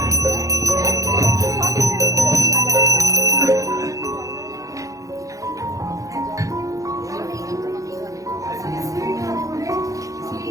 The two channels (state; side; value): late; left; 0.16 ms